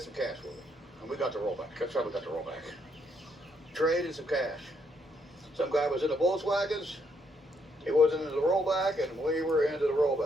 some cash with it. And we got the rollback. That's how we got the rollback. Traded some cash. Some guy was in the Volkswagens. He wasn't into the rollback, and we were into the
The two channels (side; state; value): both; normal; correlation 0.74